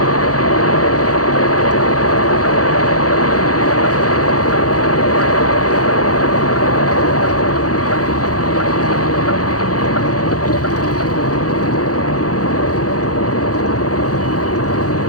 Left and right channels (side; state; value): right; late; 0.67 ms